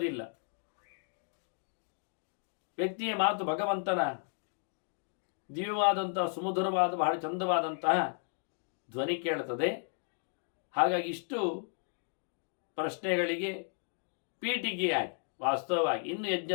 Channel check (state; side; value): silent; right; 55 dB below the other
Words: ವ್ಯಕ್ತಿಯ ಮಾತು ಭಗವಂತನ ದಿವ್ಯವಾದಂತಹ, ಸುಮಧುರವಾದ, ಬಹಳ ಚಂದವಾದಂತಹ ಧ್ವನಿ ಕೇಳುತ್ತದೆ. ಹಾಗಾಗಿ ಇಷ್ಟು ಪ್ರಶ್ನೆಗಳಿಗೆ ಪೀಠಿಗೆಯಾಗಿ ವಾಸ್ತವವಾಗಿ ಇನ್ನು